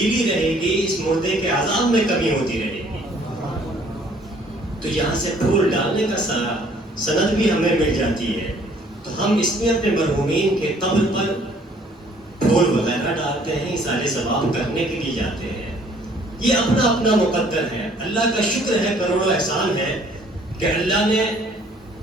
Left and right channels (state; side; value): normal; both; correlation 0.59